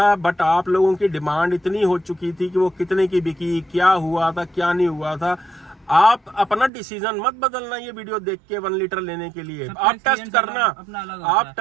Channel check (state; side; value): drops out; left; at 6.7 s